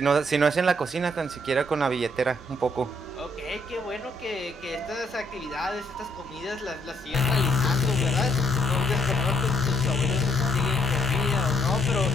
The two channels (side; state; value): both; normal; correlation 0.69